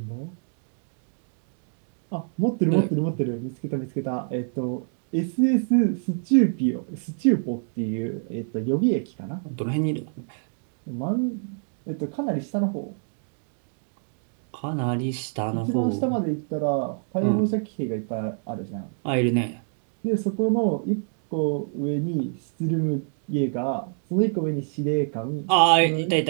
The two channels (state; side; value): silent; left; digital silence